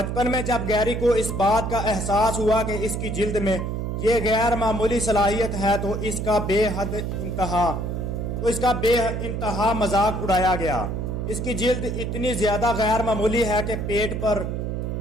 میں جب گیری کو اس بات کا احساس ہوا کہ اس کی جلد میں یہ غیر معمولی صلاحیت ہے تو اس کا بے انتہا مذاق اڑایا گیا۔ اس کی جلد اتنی زیادہ غیر معمولی ہے کہ پیٹ پر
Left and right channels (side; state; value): right; noise; hum, 3 dB below the sound